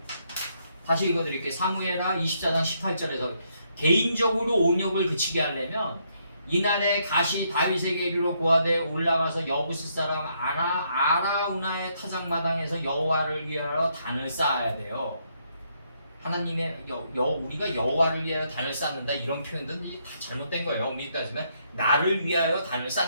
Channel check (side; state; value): both; inverted; correlation -0.74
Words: 다시 읽어드릴게요. 사무엘하 24장 18절에서 개인적으로 온역을 그치게 하려면 이날에 가시 다윗에게 이르러 고하되 올라가서 여부스 사람 아라우나의 타작마당에서 여호와를 위하여 단을 쌓아야 돼요. 하나님의 우리가 여호와를 위하여 단을 쌓는다 이런 표현들은 다 잘못된 거예요. 엄밀히 따지면 나를 위하여 단을